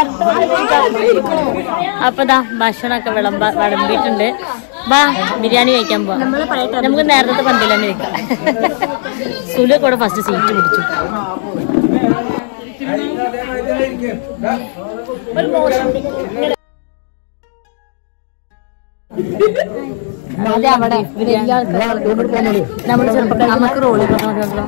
അപ്പൊ ഭക്ഷണമൊക്കെ വിളമ്പിട്ടുണ്ട്. വാ ബിരിയാണി കഴിക്കാൻ പോവാം. നമുക്ക് നേരത്തെ പന്തിൽ തന്നെ വെക്കാം. സുലു കൂടെ ഫസ്റ്റ് സീറ്റ് പിടിച്ചു. അതെ അവിടെ നമ്മള് ചെറുപ്പം നമുക്ക് റോളി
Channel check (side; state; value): right; silent; digital silence